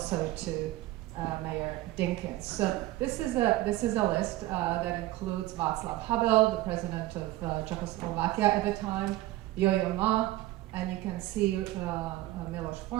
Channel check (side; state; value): left; quieter; 16.8 dB